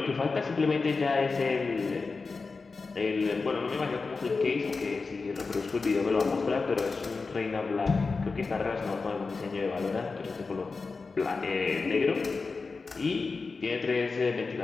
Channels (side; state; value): right; quieter; 4.3 dB